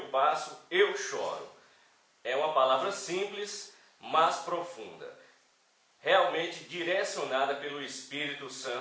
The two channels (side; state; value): both; identical; correlation 1.00